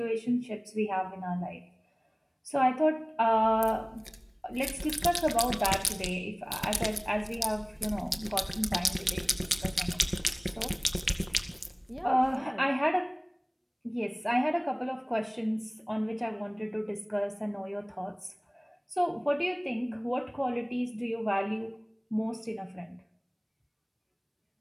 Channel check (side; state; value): both; identical; correlation 1.00